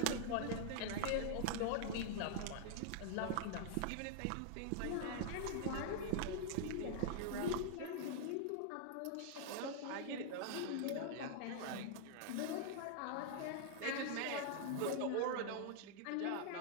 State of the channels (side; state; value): both; different; correlation -0.01